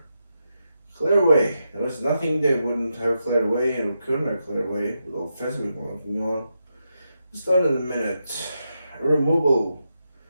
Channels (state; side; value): inverted; both; correlation -0.86